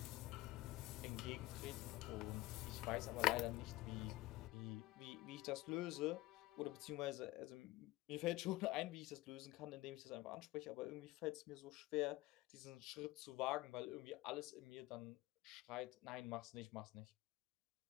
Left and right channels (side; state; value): right; quieter; 18.6 dB